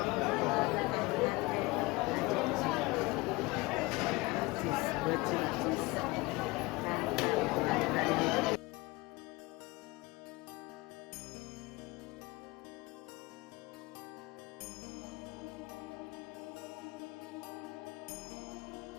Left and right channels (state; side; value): quieter; right; 22.5 dB